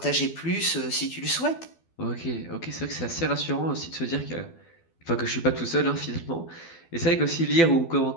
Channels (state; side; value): late; right; 12 ms